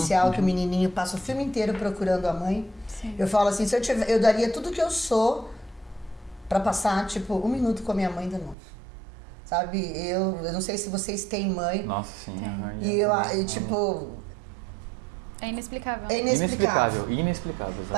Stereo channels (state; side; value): drops out; left; at 8.6 s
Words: que o menininho passa o filme inteiro procurando a mãe. Sim. Eu falo assim, eu daria tudo que eu sou para passar, tipo, 1 minuto com a minha mãe de novo. Sabe? Eu não sei se vocês têm mãe. Nossa, sim. E tipo... É inexplicável. É inexplicável. Inexplicável.